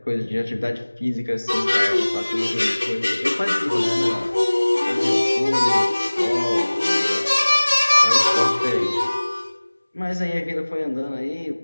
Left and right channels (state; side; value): inverted; both; correlation -1.00